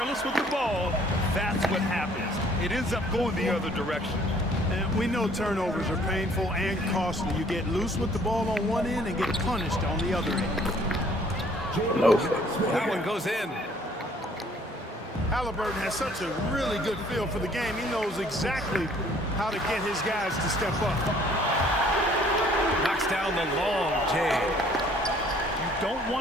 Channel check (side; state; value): both; normal; correlation 0.59